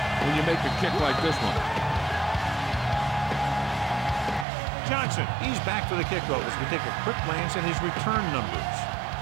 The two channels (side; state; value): left; drops out; at 4.5 s